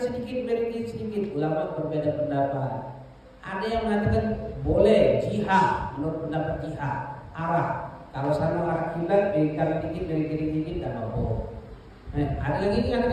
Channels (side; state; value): both; identical; correlation 1.00